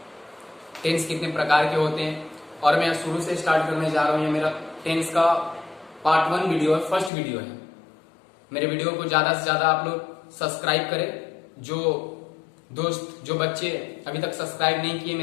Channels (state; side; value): drops out; right; at 7.1 s